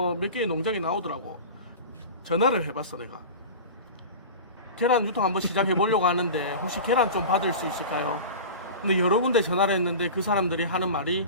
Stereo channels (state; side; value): inverted; both; correlation -0.32